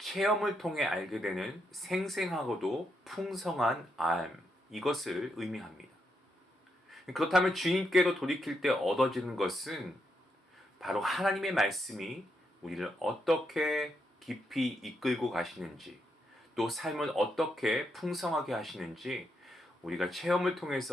통해 알게 되는 생생하고도 풍성한 알, 이것을 의미합니다. 그렇다면 주님께로 돌이킬 때 얻어지는 것은 바로 하나님의 말씀이 우리를 어떻게 깊이 이끌고 가시는지, 또 삶을 어떻게 풍성하게 하시는지 우리가 체험을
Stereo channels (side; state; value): both; normal; correlation 0.80